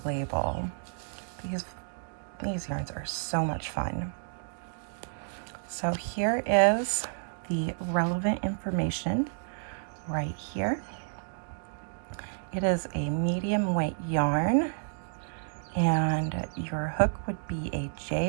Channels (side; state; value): left; silent; digital silence